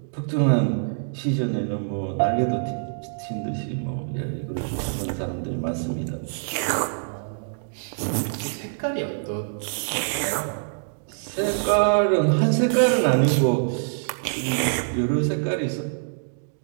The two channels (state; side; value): silent; left; digital silence